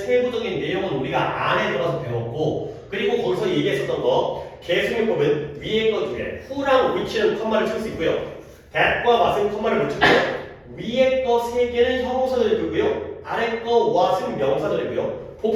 내용은 우리가 안에 들어가서 배웠고 그리고 거기서 얘기했었던 거 계승용법은 위에 거 두 개, who랑 which는 컴마를 칠 수 있고요. that과 what은 컴마를 못 치고요. 위에 거 세 개는 형용사절이고요. 아래 거 what은 명사절이고요.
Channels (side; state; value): both; identical; correlation 1.00